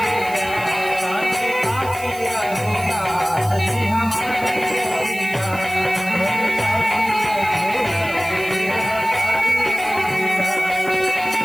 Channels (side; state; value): right; noise; hiss, 17 dB below the sound